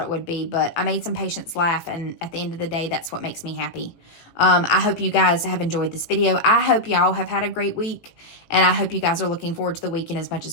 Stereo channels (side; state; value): right; late; 18 ms